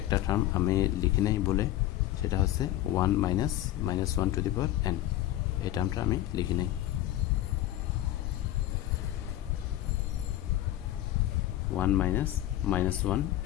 একটা টার্ম আমি লিখি নাই বলে সেটা হচ্ছে 1 - 1 to the power n এই টার্মটা আমি লিখি নাই 1 - -1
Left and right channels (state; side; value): quieter; right; 13.9 dB